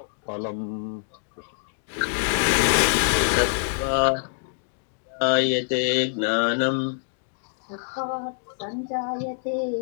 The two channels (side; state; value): right; silent; digital silence